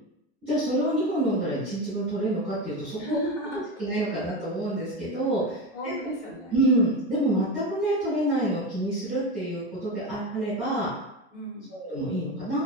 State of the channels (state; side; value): normal; both; correlation 0.19